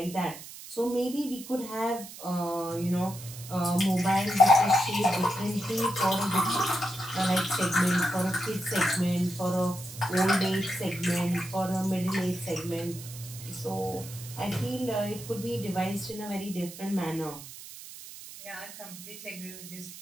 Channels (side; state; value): right; noise; hiss, 14 dB below the sound